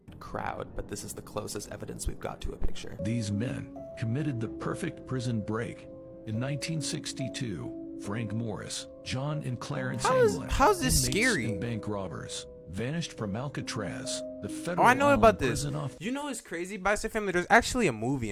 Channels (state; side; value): identical; both; correlation 1.00